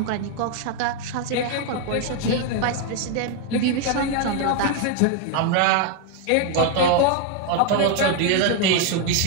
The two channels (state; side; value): different; both; correlation 0.01